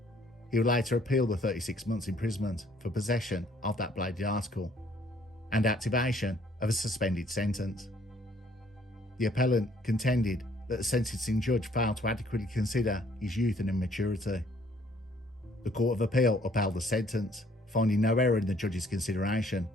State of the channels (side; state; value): both; normal; correlation 0.62